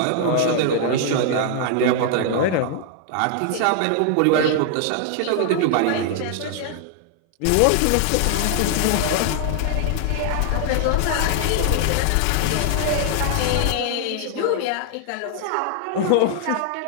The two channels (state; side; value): different; both; correlation 0.00